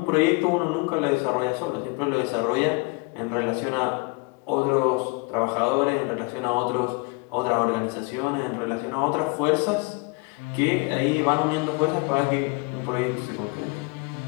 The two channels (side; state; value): right; quieter; 28.9 dB